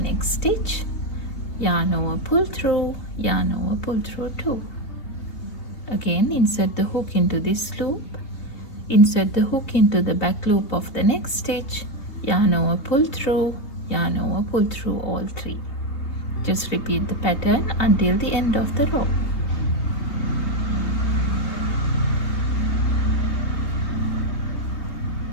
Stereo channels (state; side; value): late; right; 3.2 ms